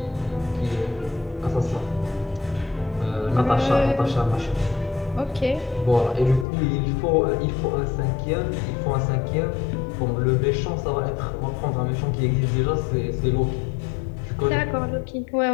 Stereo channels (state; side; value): drops out; right; at 6.5 s